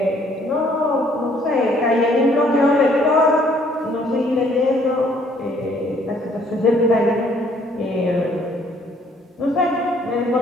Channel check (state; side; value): normal; both; correlation 0.62